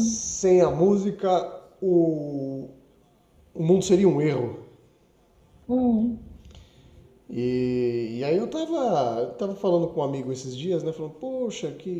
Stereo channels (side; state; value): both; identical; correlation 1.00